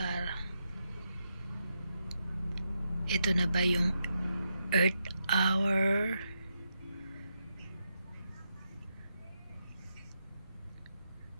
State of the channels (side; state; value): both; inverted; correlation -0.83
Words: Ito na ba yung Earth Hour?